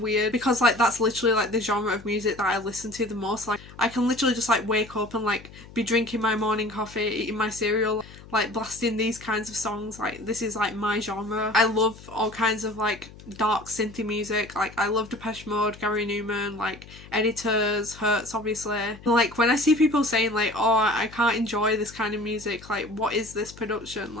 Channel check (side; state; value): left; noise; hum, 19 dB below the sound